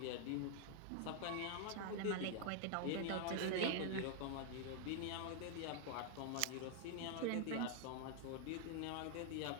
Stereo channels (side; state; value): both; different; correlation 0.00